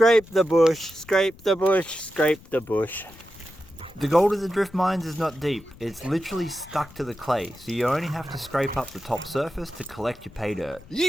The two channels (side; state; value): left; noise; rumble, 22 dB below the sound